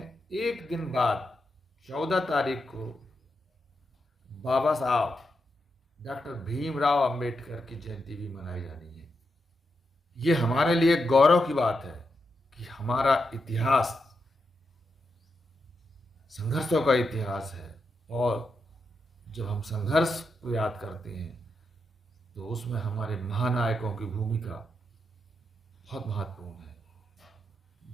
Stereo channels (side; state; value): both; normal; correlation 0.85